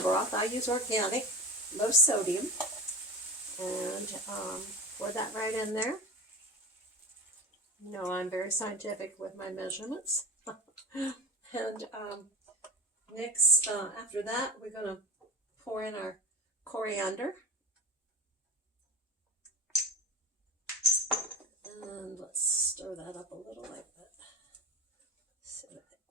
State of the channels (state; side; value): normal; both; correlation 0.25